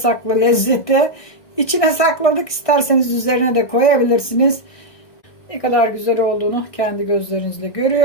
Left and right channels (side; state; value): right; late; 1.6 ms